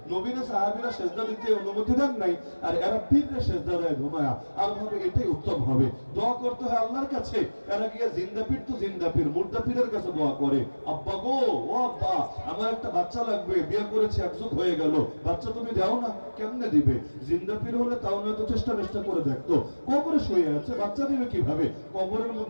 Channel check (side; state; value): both; inverted; correlation -1.00